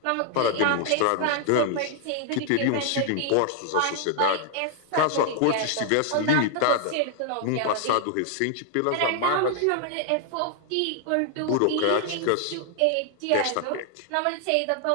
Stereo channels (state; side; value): different; both; correlation 0.00